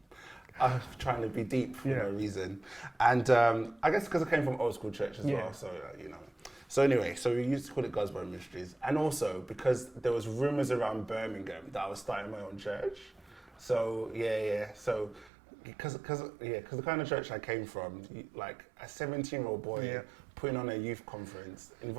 I was trying to be deep for no reason, and I guess because I came from old school church as well. So you know. So anyway, so we used to call it God's Bride Ministries, and also because there was rumours around Birmingham that I was starting my own church. So so because the kind of church I came from, like a 17-year-old boy putting on a youth conference,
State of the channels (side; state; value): left; drops out; at 15.3 s